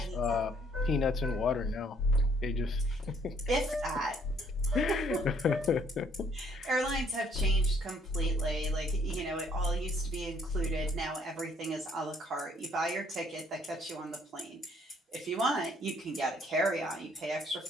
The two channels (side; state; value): both; normal; correlation 0.64